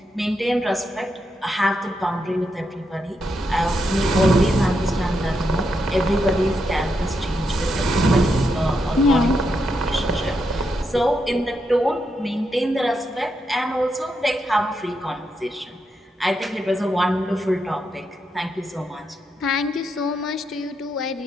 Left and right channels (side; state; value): both; normal; correlation 0.82